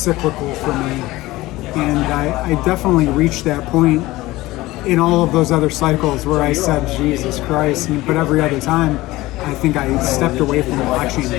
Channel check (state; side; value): quieter; right; 18.6 dB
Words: for me. And I definitely reached that point in all of those other cycles where I said, Jesus Christ. But every other time, I think I stepped away from watching